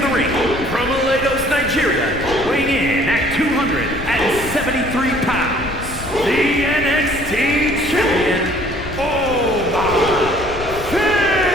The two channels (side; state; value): left; noise; rumble, 11 dB below the sound